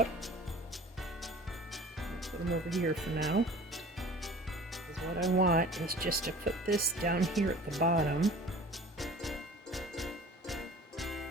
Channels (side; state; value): both; normal; correlation 0.45